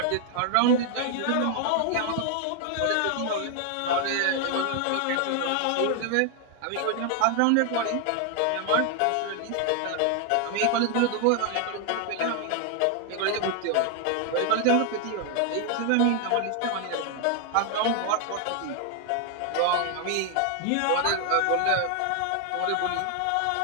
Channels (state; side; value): different; both; correlation 0.00